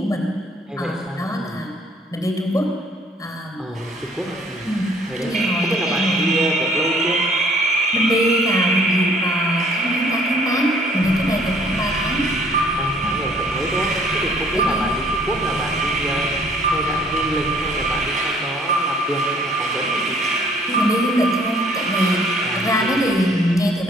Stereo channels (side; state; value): both; normal; correlation 0.59